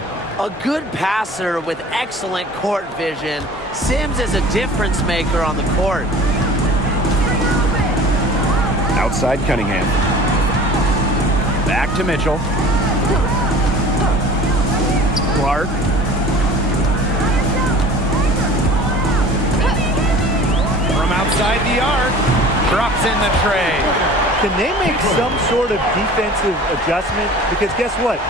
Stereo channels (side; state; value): both; normal; correlation 0.43